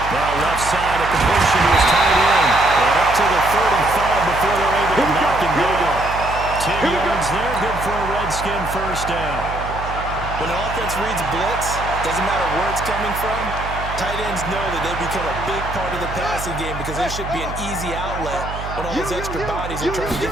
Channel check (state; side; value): noise; right; hum, 9 dB below the sound